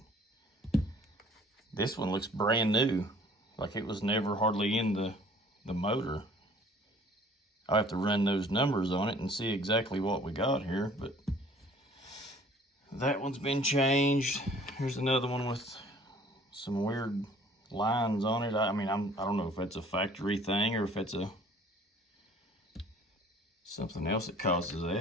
This one looks brand new, like it was never hardly in the motor. I'll have to run those numbers on it and see exactly what we got here, but that one's been changed. Here's another one with some weird lines on it. I mean, I don't know if that's a factory thing or if it's something else that causes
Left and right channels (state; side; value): normal; both; correlation 0.53